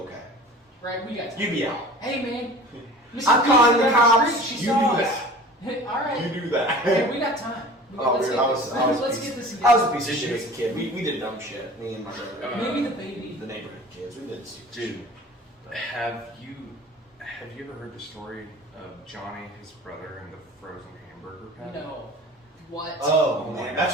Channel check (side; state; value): both; normal; correlation 0.42